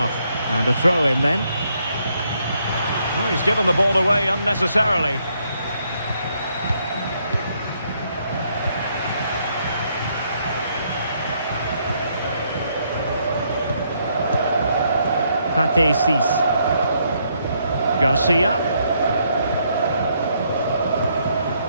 And a throw in then. Oh, he's given the ball away unnecessarily. Pate Cis. Garcia.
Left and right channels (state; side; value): inverted; both; correlation -0.73